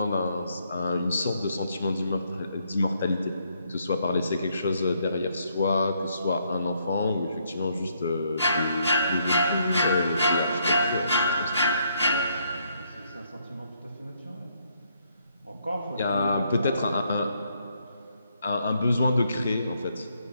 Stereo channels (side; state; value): both; inverted; correlation -0.73